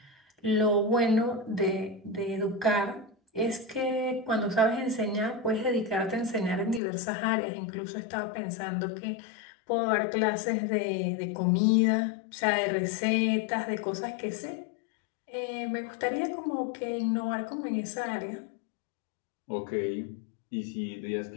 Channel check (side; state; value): right; drops out; at 6.8 s